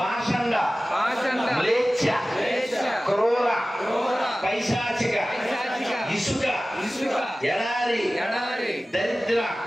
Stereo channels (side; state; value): both; normal; correlation 0.97